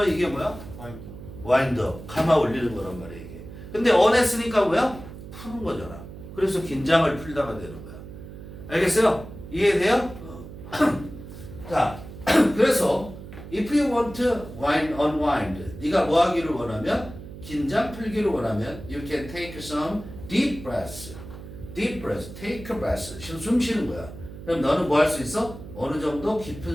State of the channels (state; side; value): noise; right; hum, 13 dB below the sound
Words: 이게 뭐야? 와인더. 감아 올리는 거란 말이야 이게. 근데 언했으니까 뭐야? 푸는 거잖아. 그래서 긴장을 풀다가 되는 거야. 알겠어요? 이해돼요? 자, 그래서 if you want to unwind, 네가 뭐 하기를 원하면 긴장 풀기를 원하면 you can take some deep breaths. deep breath, take a breath. 숨 쉬는 거야. 그럼 너는 뭐 할 수 있어? 어느 정도